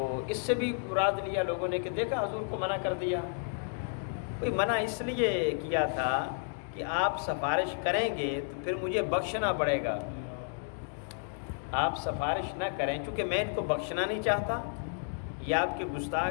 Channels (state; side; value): silent; right; digital silence